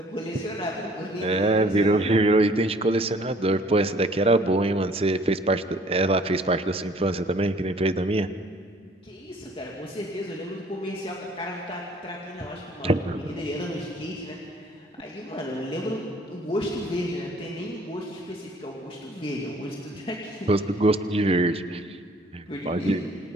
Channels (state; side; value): normal; both; correlation 0.56